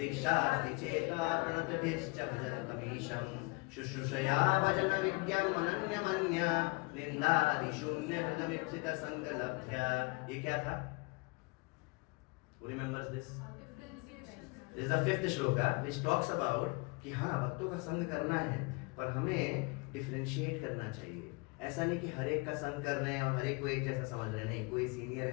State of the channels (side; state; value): right; quieter; 28.5 dB